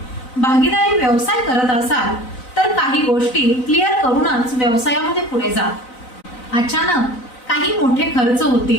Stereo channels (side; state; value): right; late; 4.0 ms